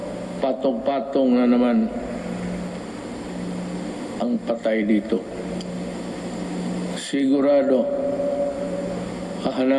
patong-patong na naman ang patay dito. Sigurado,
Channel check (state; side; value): identical; both; correlation 1.00